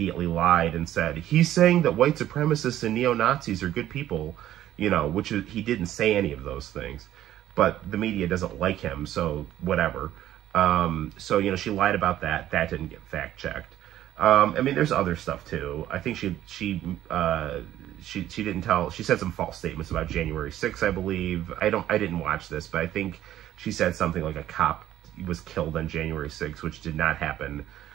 lied and said, he's saying that white supremacists and neo-Nazis are good people, which he didn't say any of those things, but the media doesn't like him, so whatever. She lied about that. That didn't get fact-checked. There's other stuff too. I think she didn't tell, she said some false statements about January 6th, I believe. I didn't watch this, but I think she said something like a cop was killed on January 6th, which did not happen.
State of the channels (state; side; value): quieter; left; 12.8 dB